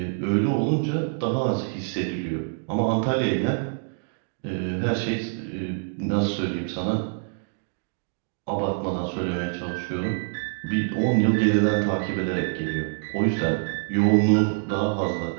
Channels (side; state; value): left; silent; digital silence